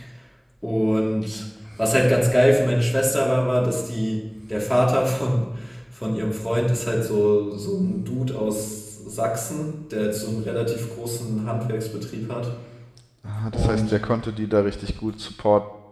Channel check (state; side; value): identical; both; correlation 1.00